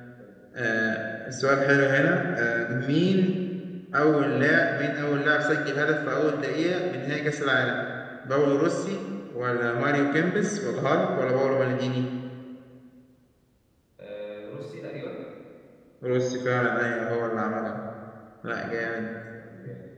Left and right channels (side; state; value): both; identical; correlation 1.00